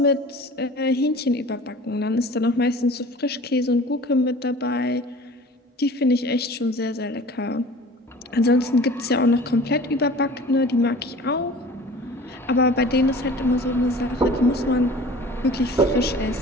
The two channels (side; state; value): both; normal; correlation 0.43